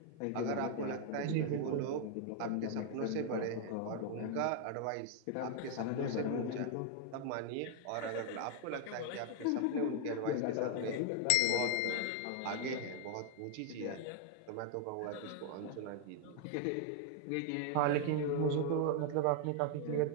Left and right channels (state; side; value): different; both; correlation 0.00